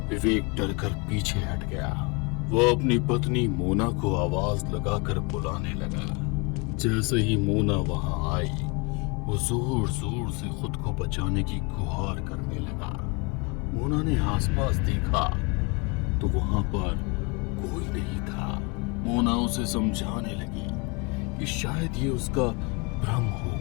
विवेक डरकर पीछे हट गया। वो अपनी पत्नी मोना को आवाज लगाकर बुलाने लगा। जैसे ही मोना वहां आई, वो जोर जोर से खुद को बचाने की गुहार करने लगा। मोना ने आसपास देखा तो वहां पर कोई नहीं था। मोना उसे समझाने लगी कि शायद ये उसका भ्रम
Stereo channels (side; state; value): right; quieter; 29.8 dB